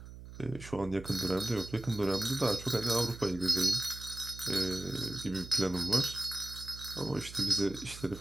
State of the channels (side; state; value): right; noise; hum, 14 dB below the sound